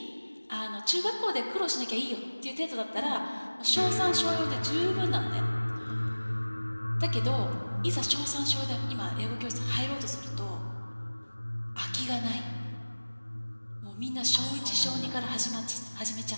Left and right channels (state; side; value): inverted; both; correlation -1.00